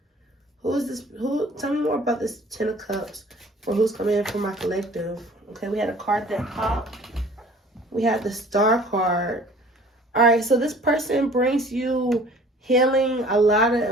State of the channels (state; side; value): normal; both; correlation 0.50